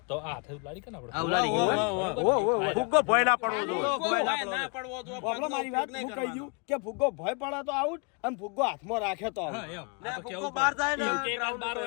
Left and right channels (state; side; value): quieter; right; 34.6 dB